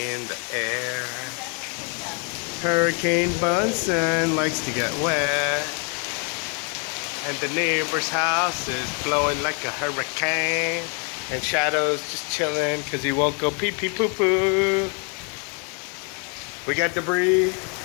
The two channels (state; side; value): quieter; right; 36.8 dB